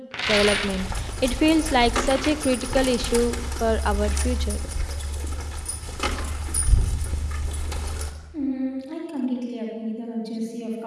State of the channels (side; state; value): both; identical; correlation 1.00